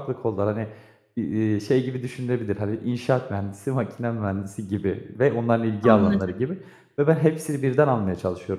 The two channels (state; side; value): identical; both; correlation 1.00